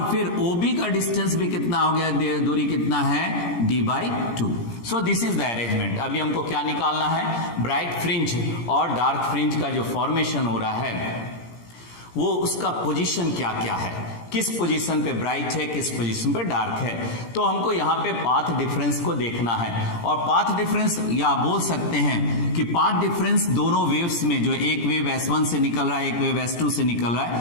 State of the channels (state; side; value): late; right; 17 ms